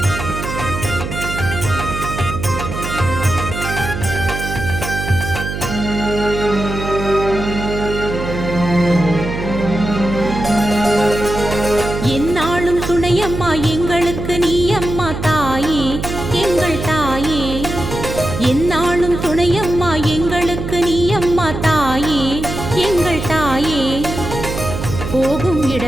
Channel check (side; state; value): right; noise; hum, 6 dB below the sound